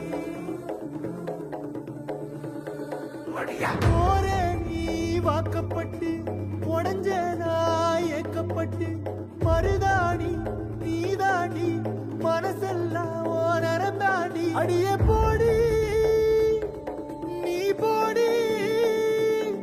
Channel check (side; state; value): both; identical; correlation 1.00